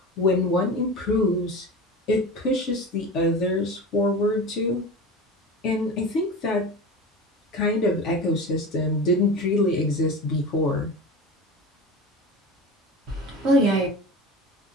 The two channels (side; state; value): both; normal; correlation 0.31